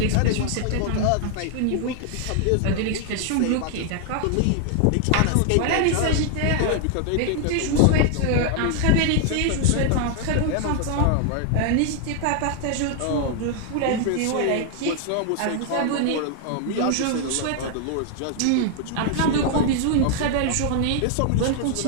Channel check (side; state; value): both; different; correlation 0.00